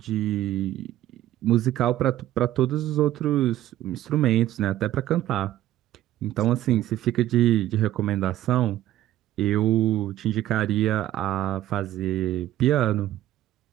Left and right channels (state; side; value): quieter; left; 13.6 dB